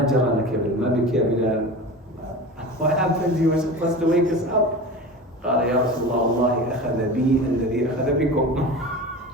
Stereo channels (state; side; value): normal; both; correlation 0.32